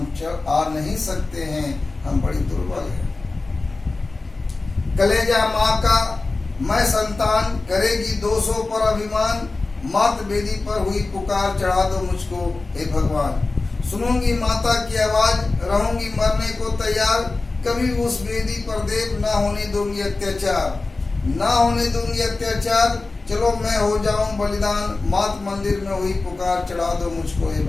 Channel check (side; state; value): right; quieter; 3.5 dB